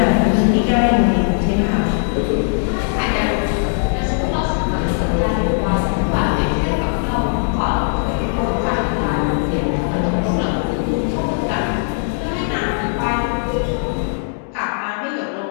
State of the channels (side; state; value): right; silent; digital silence